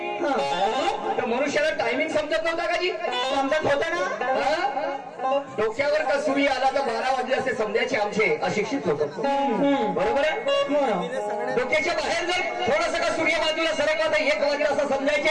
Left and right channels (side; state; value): both; identical; correlation 1.00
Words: तर मनुष्याला टायमिंग समजत नव्हता का जी? समजत होता ना. डोक्यावर का सूर्य आला तर 12 वाजले असे समजायचे आमचे अशिक्षित लोक. बरोबर आहे. डोक्याच्या बाहेर जर थोडस का सूर्य बाजूला सरकला तर 1 वाजले असं